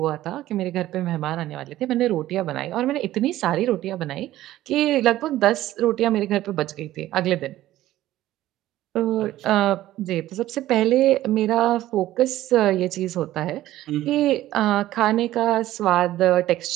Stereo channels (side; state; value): left; quieter; 14.7 dB